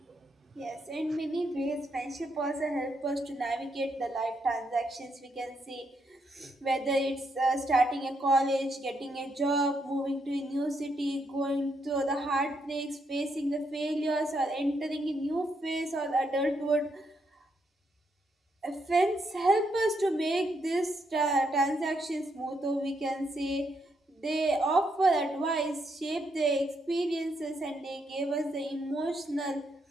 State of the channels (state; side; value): normal; both; correlation 0.78